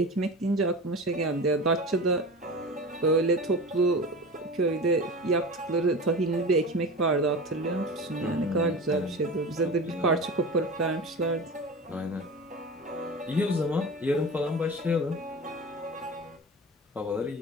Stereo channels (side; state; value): both; normal; correlation 0.32